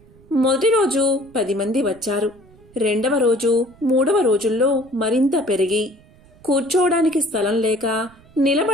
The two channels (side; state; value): right; noise; rumble, 27 dB below the sound